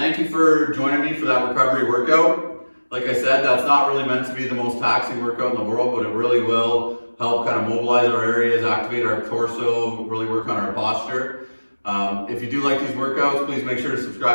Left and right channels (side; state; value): both; inverted; correlation -1.00